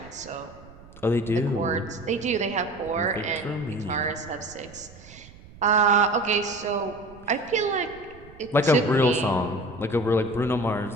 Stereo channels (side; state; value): right; noise; rumble, 21 dB below the sound